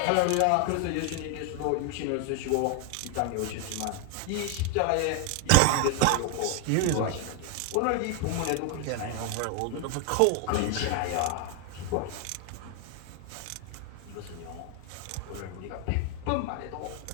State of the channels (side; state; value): both; different; correlation 0.01